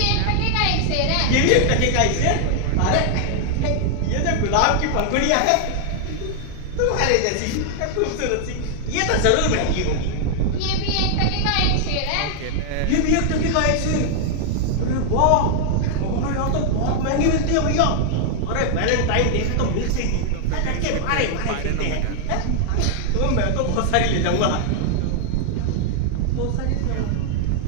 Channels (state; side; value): different; both; correlation 0.00